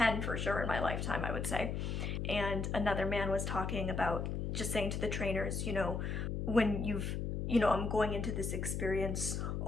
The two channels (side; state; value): left; noise; hum, 2 dB below the sound